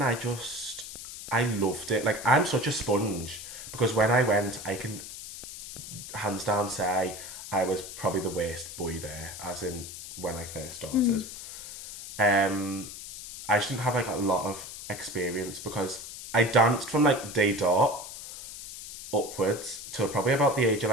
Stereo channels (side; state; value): left; noise; hiss, 11 dB below the sound